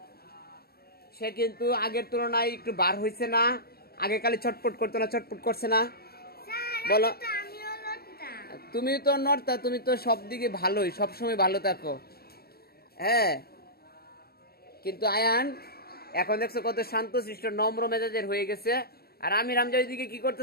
সে কিন্তু আগের তুলনায় একটু বার হইছে না? আগে কালে ছটপট করতো না, ছটপট করছে না? বলো। তুমি তো নড়তা, তুমি তো সব দিকে ভালোই, সবসময় ভালো থাকো। হ্যাঁ, কিন্তু আয়ান এখন দেখছো কত শান্তশিষ্ট নম্র মেজাজের হয়ে গেছে। আর আমির হামজা ওইদিকে কি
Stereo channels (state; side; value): late; right; 0.45 ms